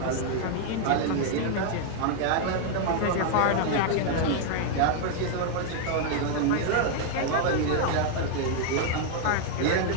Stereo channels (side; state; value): both; different; correlation 0.00